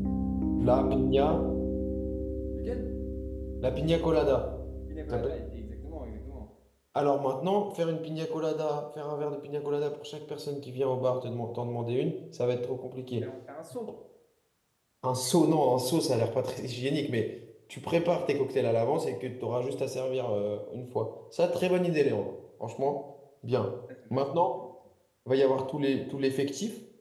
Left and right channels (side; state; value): both; identical; correlation 1.00